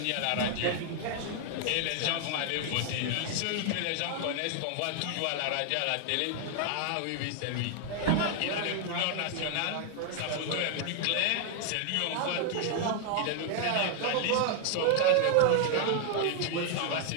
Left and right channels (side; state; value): both; different; correlation 0.00